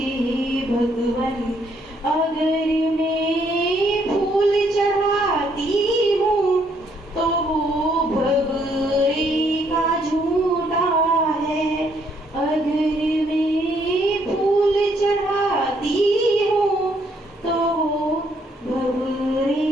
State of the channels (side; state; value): both; normal; correlation 0.70